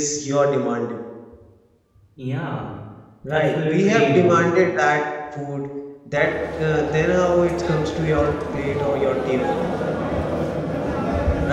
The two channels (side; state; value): both; identical; correlation 1.00